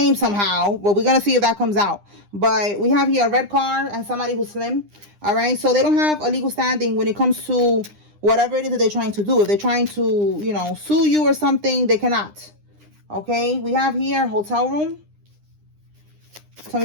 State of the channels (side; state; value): left; late; 9.9 ms